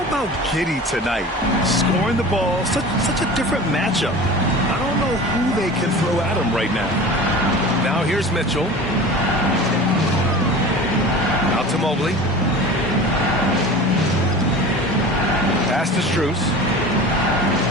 about Giddey tonight? Scoring the ball, such a different matchup. I don't know who they can throw at him right now. Now here's Mitchell. Out to Mobley. Pass to Strus.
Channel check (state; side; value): normal; both; correlation 0.36